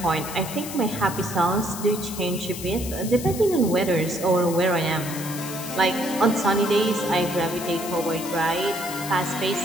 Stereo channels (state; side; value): noise; left; hiss, 10 dB below the sound